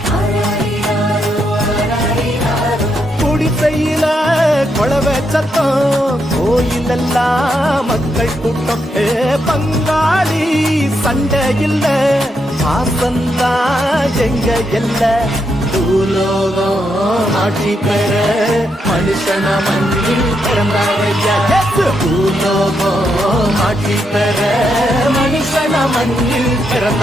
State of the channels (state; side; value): normal; both; correlation 0.80